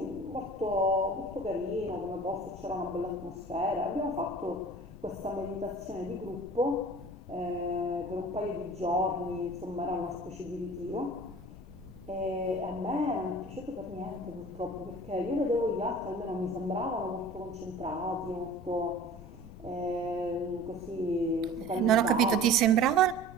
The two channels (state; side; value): noise; left; rumble, 15 dB below the sound